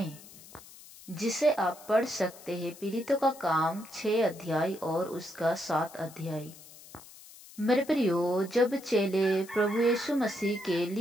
जिसे आप पढ़ सकते हैं पीड़ितों का काम 6 अध्याय और उसका 7 अध्याय। मेरे प्रियो, जब चेले प्रभु यीशु मसीह के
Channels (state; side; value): noise; left; hiss, 20 dB below the sound